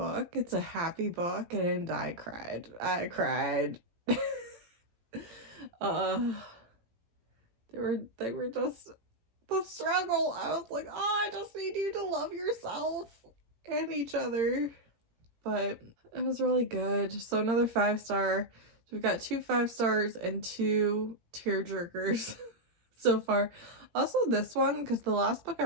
It's a happy book, and I cried. They were just the struggle. I was like, I just need you to love yourself and each other. But it was really good. So another 5-star. So we've got 2 5 stars and 2 tearjerkers so far. Also this one, because the last book I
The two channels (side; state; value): left; late; 18 ms